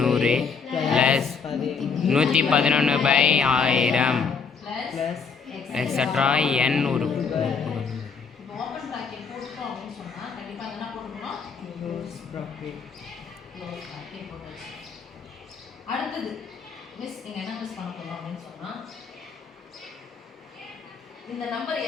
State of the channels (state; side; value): quieter; right; 5.5 dB